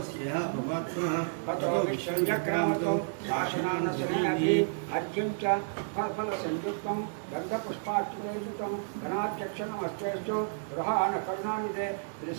భగవత్పునః తతో విశ్వంజక్రామతో శాసనానసమయభి అర్ఘ్యం చ ఫల సంయుక్తం గంధపుష్పార్చుతం గణాధ్యక్షణమస్తేస్తు గృహాణ కరుణానిదే శ్రీ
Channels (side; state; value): left; silent; digital silence